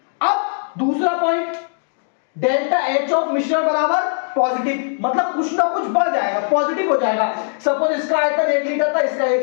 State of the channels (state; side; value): silent; right; digital silence